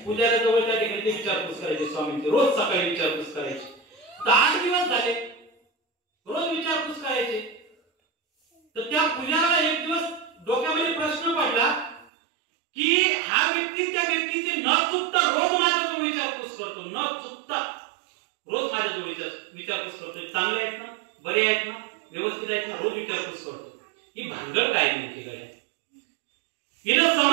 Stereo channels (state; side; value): drops out; left; at 12.1 s